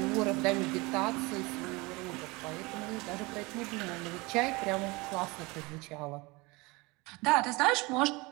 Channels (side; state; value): left; quieter; 24.8 dB